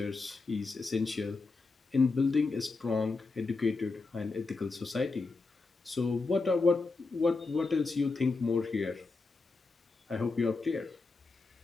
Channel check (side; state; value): right; quieter; 3.9 dB